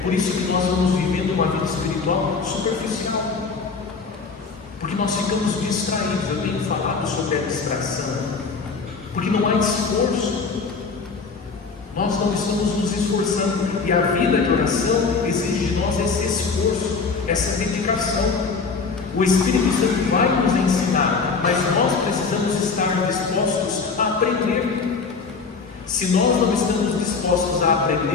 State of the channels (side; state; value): right; quieter; 4.8 dB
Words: isso que nós vamos vivendo uma vida espiritual superficial, porque nós ficamos distraídos. Eu tenho falado sobre a distração, porque não há esforço. Nós não estamos nos esforçando, e a vida de oração exige de nós esse esforço, essa dedicação. O Espírito Santo vai nos ensinar, mas nós precisamos estar dispostos a aprender. Se nós não estamos dispostos a